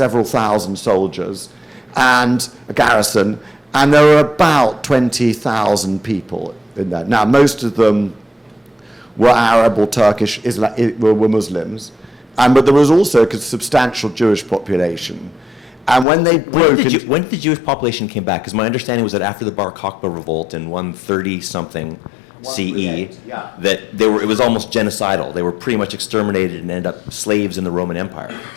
thousand soldiers and a garrison, and there were about 20,000 people in there. Now, most of them were Arab or Turkish, were Muslims, but there was also a substantial Jewish population. And when they broke... When did the Jewish population came back? Because my understanding was that after the Bar Kokhba revolt in 130-something CE, yeah, that it was almost genocidal. They were pretty much exterminated and ended up slaves in the Roman Empire.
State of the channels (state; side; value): drops out; right; at 16.1 s